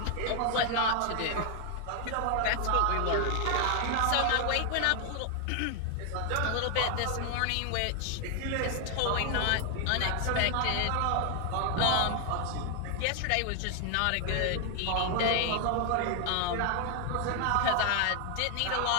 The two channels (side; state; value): both; different; correlation 0.00